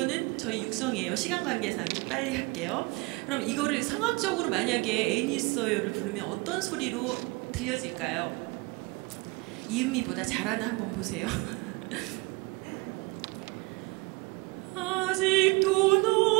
저희 육성이에요. 시간 관계상 좀 빨리 할게요. 그럼 이거를 성악적으로 만약에 애인 있어요를 부르면 어떤 소리로 들려질까요? 이은미보다 잘하나 한번 보세요. 아직도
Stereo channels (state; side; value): quieter; left; 25.6 dB